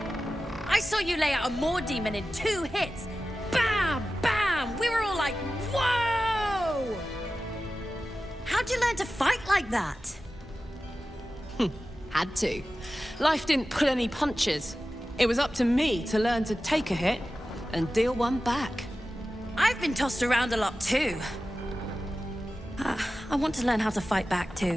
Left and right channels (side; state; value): both; normal; correlation 0.94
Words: I saw you lay out a Moor demon in 2 hits. Bam! Bam! We were all like, whoa! How'd you learn to fight like that? Had to. Life didn't pull any punches. It was up to me to learn to take a hit and deal one back. I've been tossed around a lot too. I want to learn how to fight back